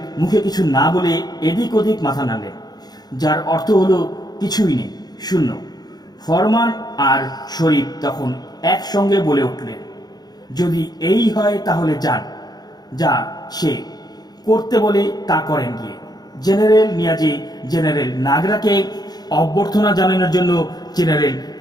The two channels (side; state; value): right; late; 0.19 ms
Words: মুখে কিছু না বলে এদিক ওদিক মাথা নাড়লেন, যার অর্থ হলো কিছুই নেই, শূন্য। ফরমান আর শরীফ তখন একসঙ্গে বলে উঠলেন, যদি এই হয় তাহলে যান, যা সে করতে বলে তা করেন গিয়ে। জেনারেল নিয়াজি জেনারেল নাগরাকে অভ্যর্থনা জানানোর জন্য জেনারেল